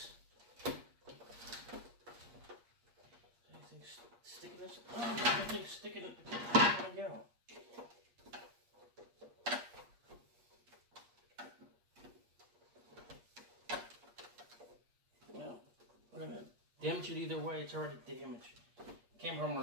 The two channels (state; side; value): late; left; 8.4 ms